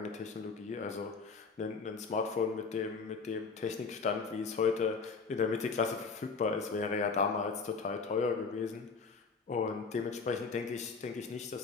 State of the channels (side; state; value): right; quieter; 4.8 dB